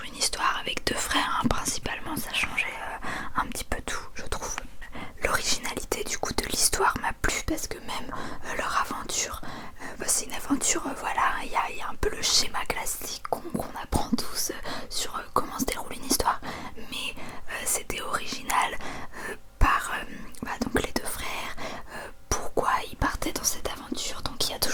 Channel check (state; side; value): identical; both; correlation 1.00